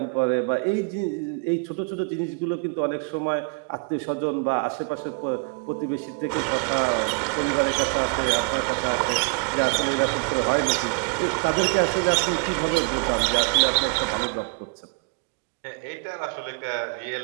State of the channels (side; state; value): left; quieter; 36.0 dB